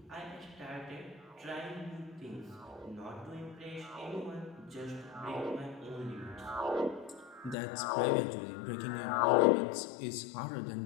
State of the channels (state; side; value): drops out; right; at 7.6 s